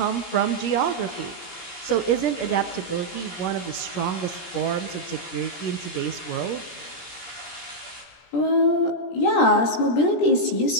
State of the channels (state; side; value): late; right; 17 ms